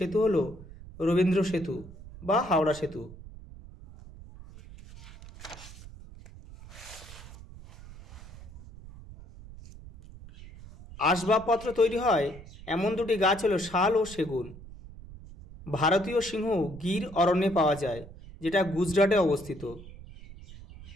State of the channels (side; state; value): right; noise; rumble, 17 dB below the sound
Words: হলো রবীন্দ্র সেতু বা হাওড়া সেতু। আসবাবপত্র তৈরি হয় এমন দুটি গাছ হলো শাল ও সেগুন। ভারতীয় সিংহ গির অরণ্যে পাওয়া যায়, যেটা গুজরাটে অবস্থিত।